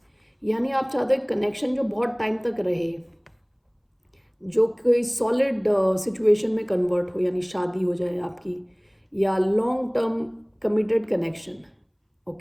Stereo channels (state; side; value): identical; both; correlation 1.00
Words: यानी आप चाहते हो कनेक्शन जो बहुत टाइम तक रहे, जो कोई सॉलिड सिचुएशन में कन्वर्ट हो, यानी शादी हो जाए आपकी, या long term committed connection.